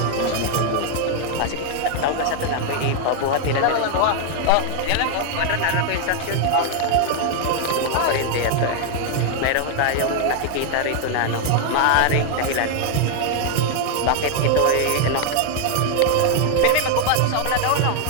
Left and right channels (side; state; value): both; different; correlation 0.00